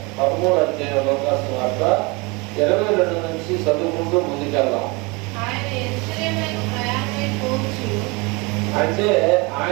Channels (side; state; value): left; quieter; 27.1 dB